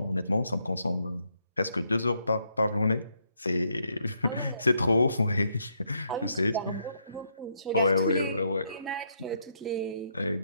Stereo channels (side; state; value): both; inverted; correlation -0.75